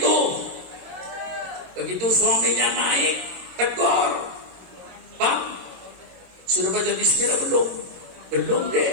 Begitu suaminya naik, tegur. Bang, sudah baca bismillah belum? Belum deh.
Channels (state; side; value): late; left; 22 ms